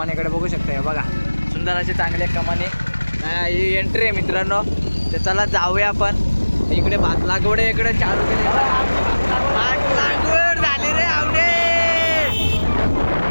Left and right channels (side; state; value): both; inverted; correlation -1.00